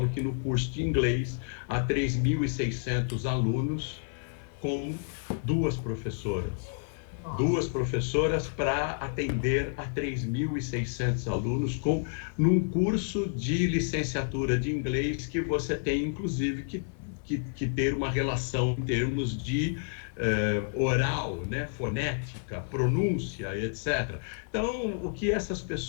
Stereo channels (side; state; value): right; silent; 58 dB below the other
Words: que no curso de inglês há 3.600 alunos com duas professoras. Duas professoras para atender a 3.600 alunos num curso de licenciatura de inglês que você tem, inclusive, que ter uma relação em termos de oral, né, fonética, pronúncia, etc. Então, o que essas